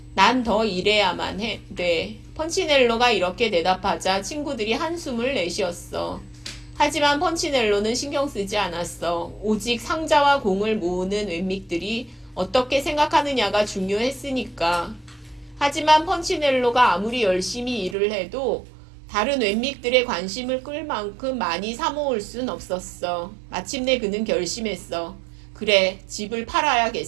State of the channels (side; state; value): left; drops out; at 17.9 s